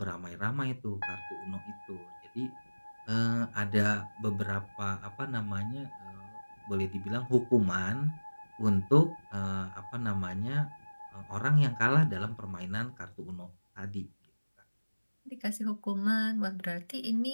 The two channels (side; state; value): both; inverted; correlation -1.00